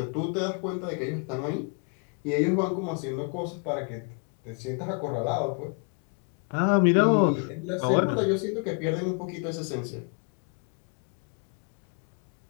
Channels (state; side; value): quieter; right; 39.2 dB